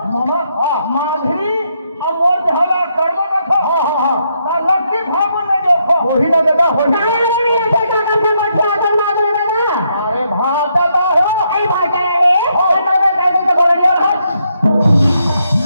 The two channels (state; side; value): inverted; both; correlation -0.77